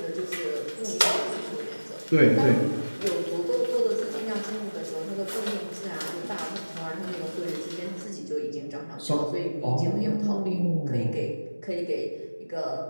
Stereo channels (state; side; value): inverted; both; correlation -1.00